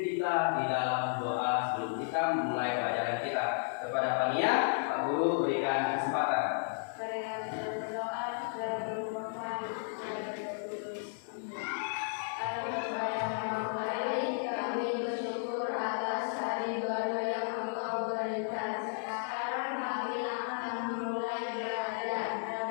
kita di dalam doa sebelum kita memulai pelajaran kita. Kepada Pania, Pak Guru berikan kesempatan.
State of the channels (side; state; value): right; silent; digital silence